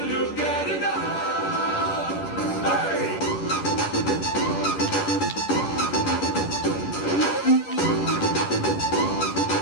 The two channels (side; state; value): right; late; 10 ms